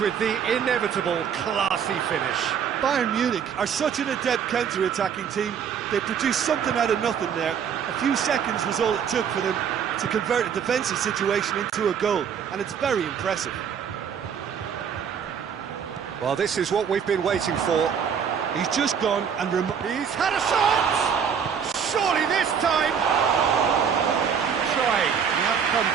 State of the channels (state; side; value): quieter; left; 7.5 dB